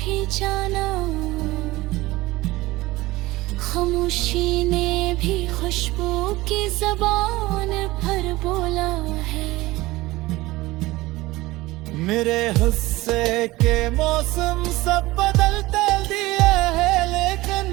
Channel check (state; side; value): quieter; left; 19.3 dB